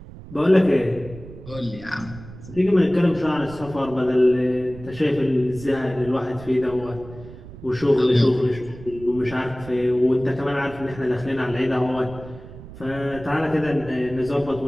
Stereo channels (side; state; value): right; noise; rumble, 16 dB below the sound